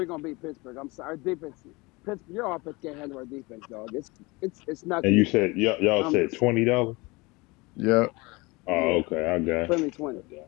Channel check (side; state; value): right; quieter; 24.4 dB